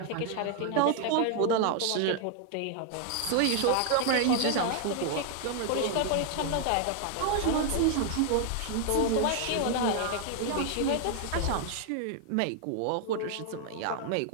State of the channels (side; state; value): both; different; correlation 0.00